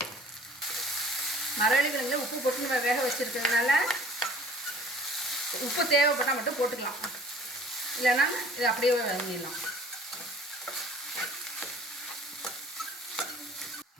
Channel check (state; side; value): normal; both; correlation 0.51